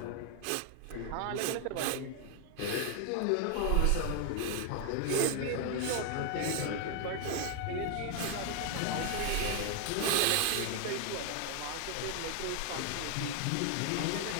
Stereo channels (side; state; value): both; different; correlation 0.00